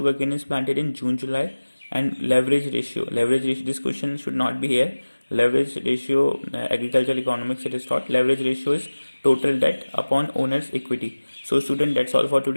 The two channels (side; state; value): both; inverted; correlation -1.00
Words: is planted in June, July. And leverage ratio. This question should not be here. Leverage ratio, agricultural economics it is taught. Leverage ratio is total debt upon owner's equity. So student, that's all for